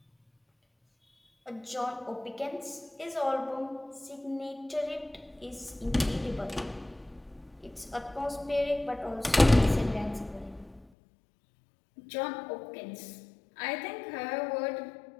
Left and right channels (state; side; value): drops out; right; at 10.9 s